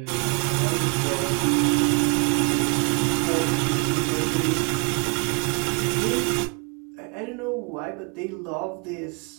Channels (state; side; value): quieter; left; 34.5 dB